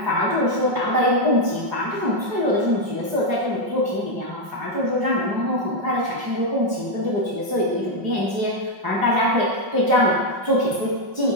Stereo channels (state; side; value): late; left; 5.4 ms